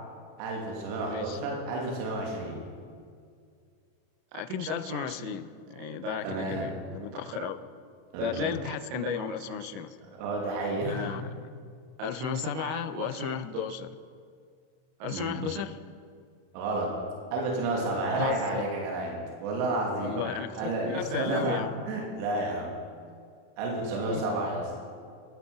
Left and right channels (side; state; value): left; late; 31 ms